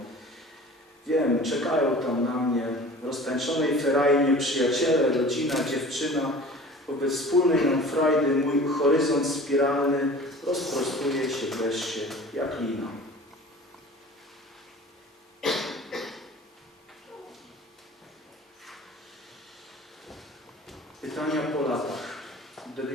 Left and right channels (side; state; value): both; normal; correlation 0.42